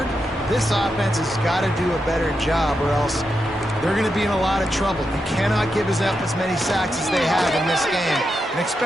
this offense has got to do a better job, or else they're going to be in a lot of trouble. You cannot give us up as many sacks as they have in this game and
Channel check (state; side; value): normal; both; correlation 0.86